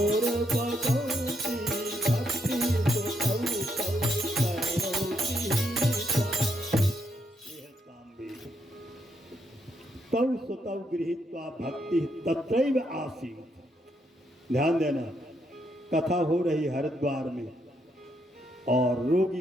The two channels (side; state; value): both; normal; correlation 0.77